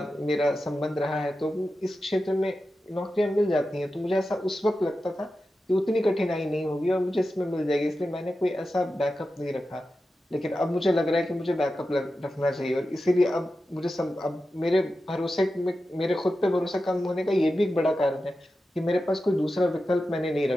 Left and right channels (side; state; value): both; normal; correlation 0.92